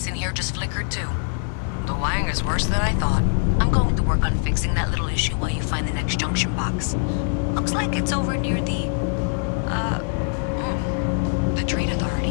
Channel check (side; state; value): right; silent; 63 dB below the other